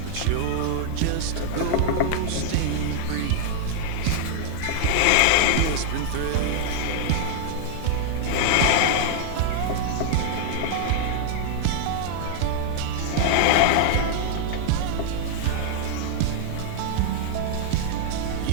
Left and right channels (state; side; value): different; both; correlation -0.01